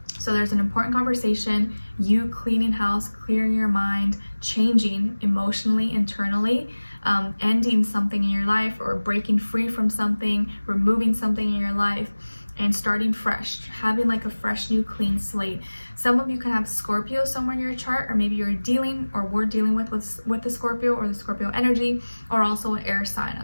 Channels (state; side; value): inverted; both; correlation -1.00